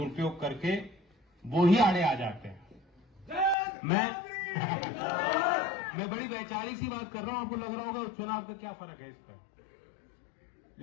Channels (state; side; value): drops out; right; at 3.6 s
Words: करके वो ही आड़े आ जाते हैं। मैं बड़ी वैचारिक सी बात कर रहा हूं, आपको लग रहा होगा चुनाव का क्या फर्क है इस पर,